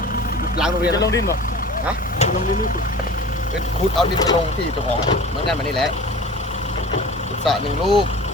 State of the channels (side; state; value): both; normal; correlation 0.39